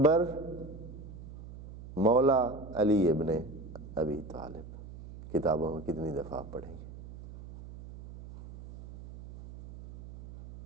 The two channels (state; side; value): noise; right; hum, 14 dB below the sound